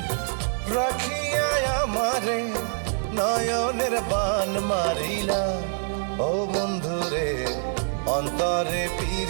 রাখিয়া আমারে নয়নের বান মারিলা। ও বন্ধুরে অন্তরে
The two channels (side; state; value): left; silent; digital silence